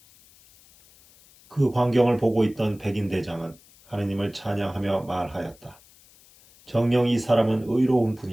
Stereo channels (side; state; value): left; noise; hiss, 27 dB below the sound